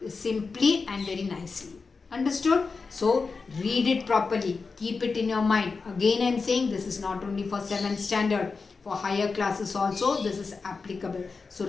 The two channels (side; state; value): right; quieter; 4.6 dB